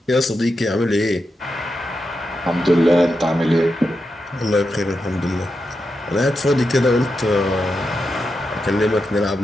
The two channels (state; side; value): normal; both; correlation 0.87